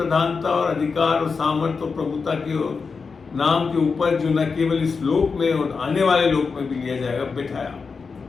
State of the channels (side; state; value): right; quieter; 5.0 dB